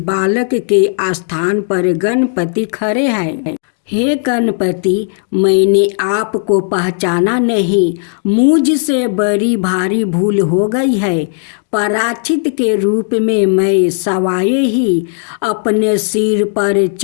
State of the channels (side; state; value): right; silent; digital silence